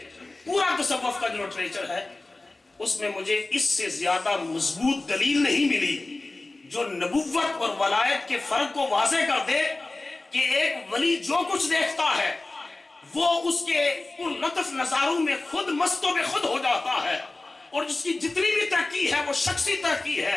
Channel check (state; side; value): quieter; right; 3.0 dB